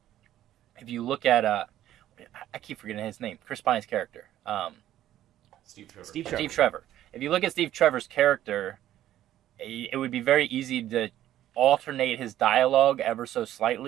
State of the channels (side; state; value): left; quieter; 12.6 dB